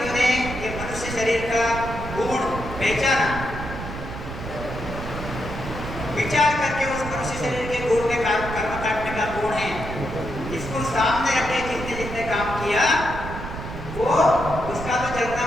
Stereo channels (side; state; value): right; noise; rumble, 8 dB below the sound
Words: ये मनुष्य शरीर का गुण पहचाना, विचार करके उस मनुष्य शरीर के गुण में कर्म काटने का गुण है, इसको सामने रखे, जिसने जिसने काम किया वो उसका तो जलना